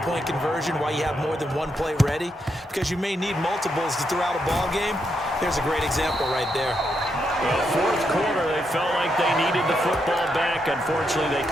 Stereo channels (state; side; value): normal; both; correlation 0.80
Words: conversion, why you have more than one play ready, because you may need multiples to throw out a ball game. There's a great example right there. Well, 4th quarter, they felt like they needed the football back. Unfortunately, they